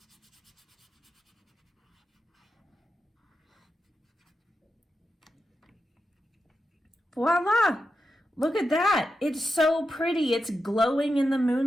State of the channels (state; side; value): normal; both; correlation 0.88